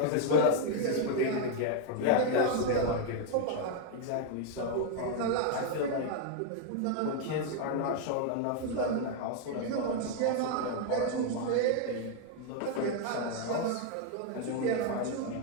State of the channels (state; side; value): different; both; correlation 0.00